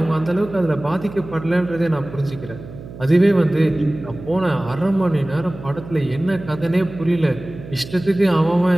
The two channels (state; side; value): noise; right; hum, 15 dB below the sound